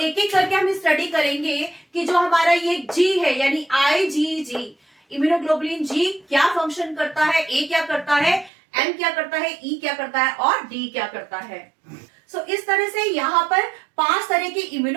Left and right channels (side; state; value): left; drops out; at 8.5 s